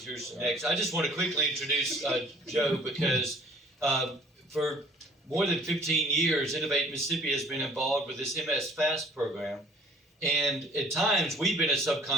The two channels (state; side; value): normal; both; correlation 0.53